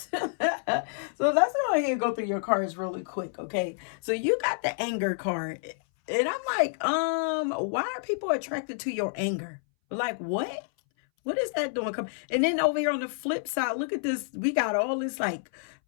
So let's go ahead and go through your cards really quick, okay? So you got the anger card. And I'm like, why are people attracted to your anger? Like, what? What is that doing? And then over here on the flip side, look at this. We got all this like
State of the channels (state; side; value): silent; right; 59 dB below the other